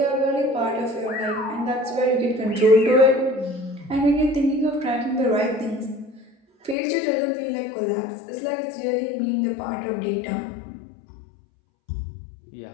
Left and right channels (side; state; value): right; drops out; at 6.8 s